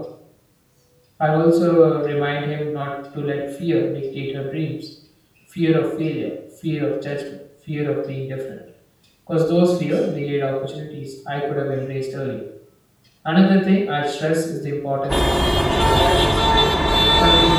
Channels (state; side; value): identical; both; correlation 1.00